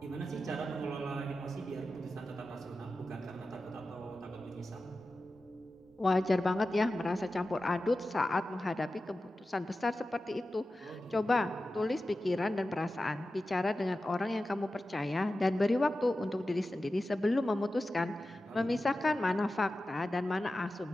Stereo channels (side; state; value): both; normal; correlation 0.93